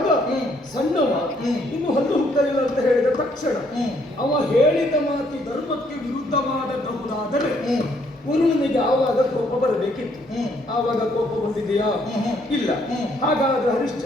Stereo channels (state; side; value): normal; both; correlation 0.68